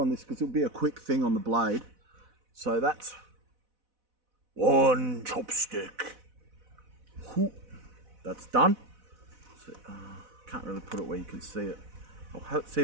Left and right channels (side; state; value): left; late; 4.0 ms